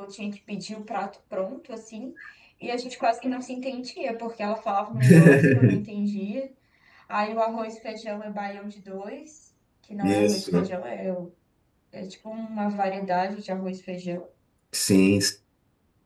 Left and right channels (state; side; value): identical; both; correlation 1.00